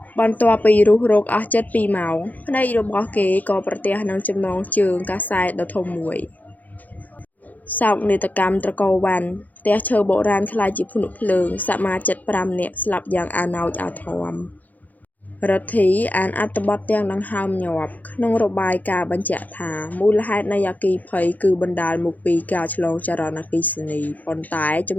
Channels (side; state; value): right; late; 0.081 ms